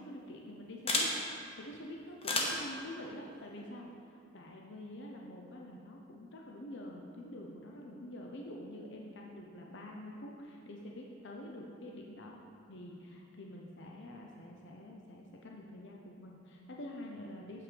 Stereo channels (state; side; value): normal; both; correlation 0.19